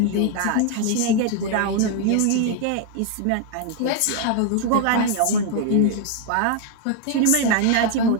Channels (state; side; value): different; both; correlation 0.00